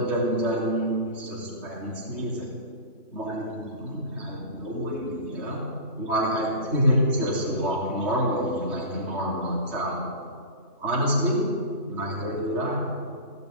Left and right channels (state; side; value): late; left; 3.2 ms